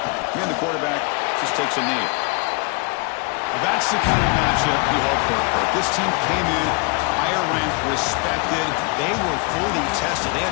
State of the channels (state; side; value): quieter; right; 30.9 dB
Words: Here the quarterback just takes a knee. Well, that's the kind of matchup you hope for. This team came in higher ranked, respected. They were fully tested. They